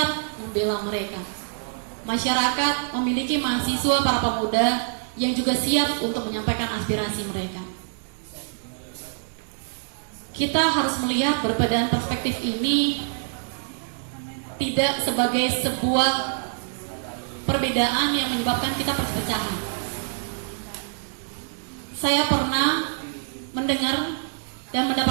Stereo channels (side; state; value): left; silent; digital silence